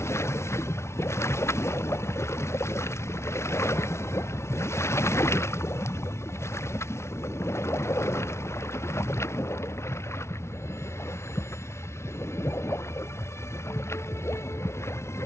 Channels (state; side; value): late; right; 0.13 ms